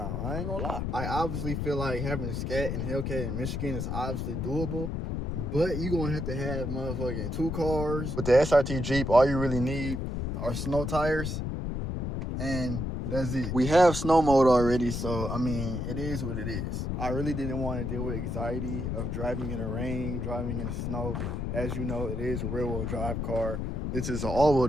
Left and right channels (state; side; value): noise; left; rumble, 2 dB below the sound